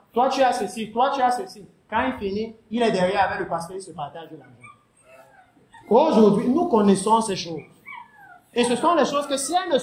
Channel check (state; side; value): identical; both; correlation 1.00